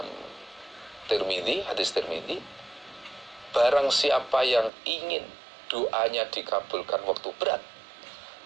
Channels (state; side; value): drops out; left; at 4.7 s